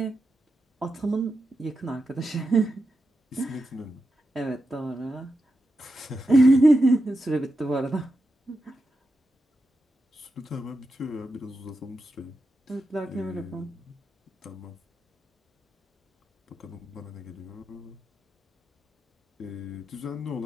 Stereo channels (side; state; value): both; normal; correlation 0.88